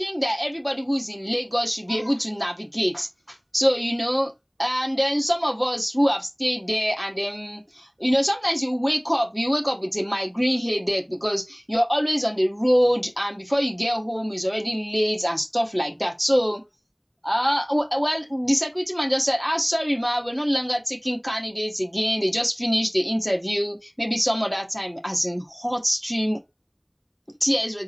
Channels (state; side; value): identical; both; correlation 1.00